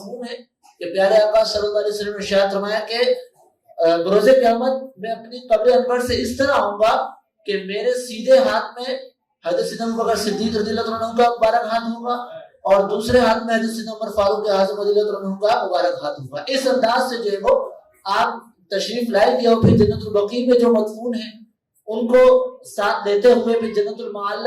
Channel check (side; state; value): both; identical; correlation 1.00